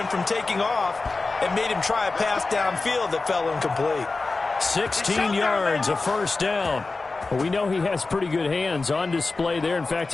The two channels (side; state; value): right; quieter; 3.7 dB